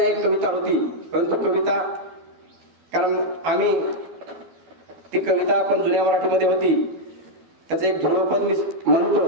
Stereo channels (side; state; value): left; late; 12 ms